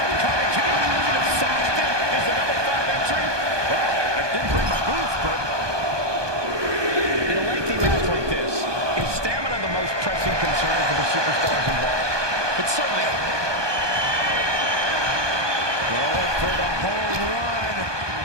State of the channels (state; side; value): late; left; 1.2 ms